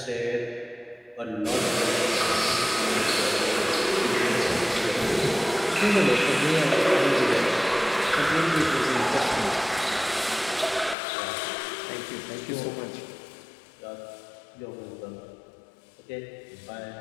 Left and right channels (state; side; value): drops out; right; at 11.0 s